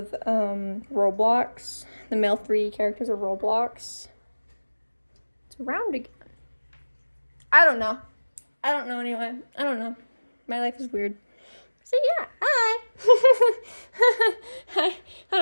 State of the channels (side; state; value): both; inverted; correlation -1.00